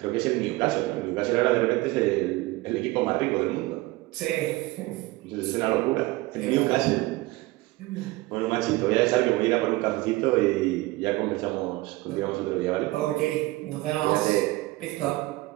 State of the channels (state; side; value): quieter; left; 20.3 dB